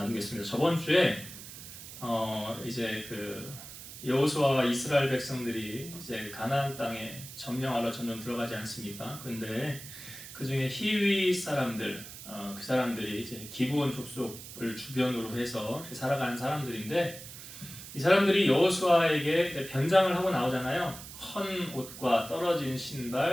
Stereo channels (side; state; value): right; noise; hiss, 13 dB below the sound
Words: 저번 주에 이제 여호수아와 이스라엘 백성들이 이제 가나안 땅에 점령하러 점점 들어가지 않습니까? 근데 그 중에 히위 사람들, 그 사람들이 이제 기브온 족속을 주변으로 해서 살아가는 사람들인데, 이 사람들이 여호수아에게 변장을 하고 나오잖아요. 헌 옷과 떨어진